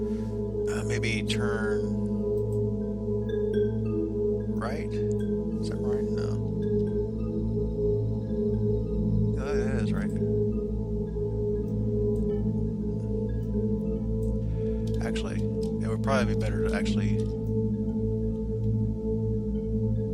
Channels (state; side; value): identical; both; correlation 1.00